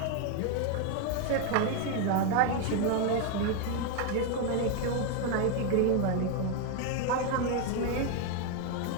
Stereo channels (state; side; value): different; both; correlation 0.01